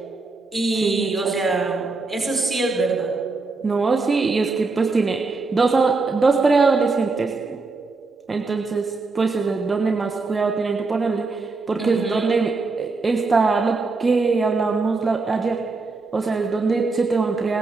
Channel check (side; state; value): left; quieter; 3.9 dB